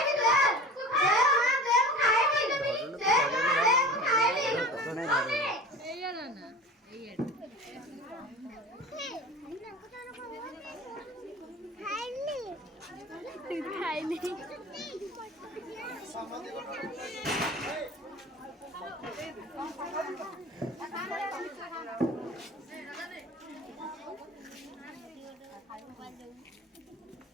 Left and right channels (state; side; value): normal; both; correlation 0.37